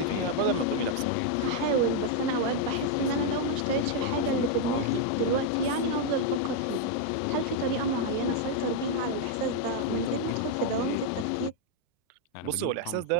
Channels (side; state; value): both; different; correlation 0.00